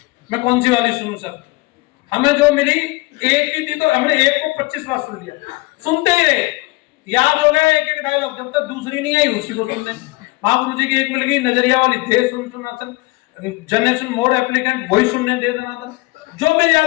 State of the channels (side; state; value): right; quieter; 23.3 dB